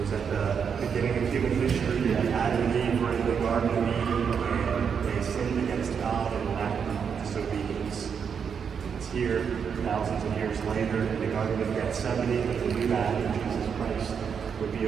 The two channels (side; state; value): left; quieter; 6.9 dB